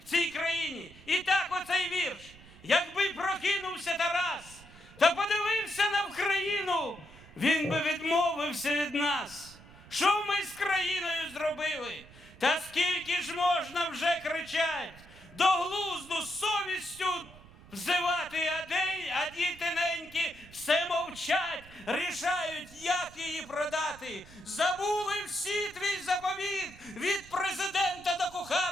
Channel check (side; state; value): right; noise; rumble, 21 dB below the sound